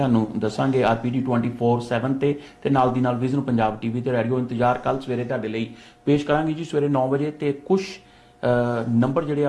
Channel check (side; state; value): both; identical; correlation 1.00